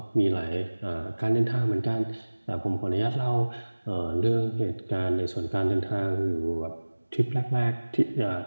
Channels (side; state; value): both; inverted; correlation -1.00